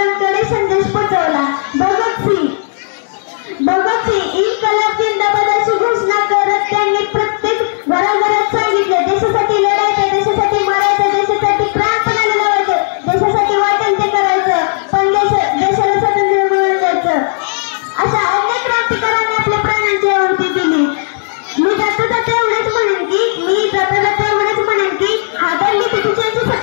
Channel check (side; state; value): right; silent; digital silence